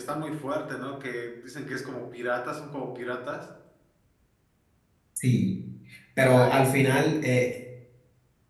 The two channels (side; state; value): both; identical; correlation 1.00